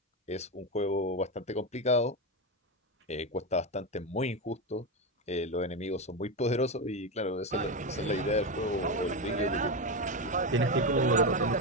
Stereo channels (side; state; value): both; normal; correlation 0.13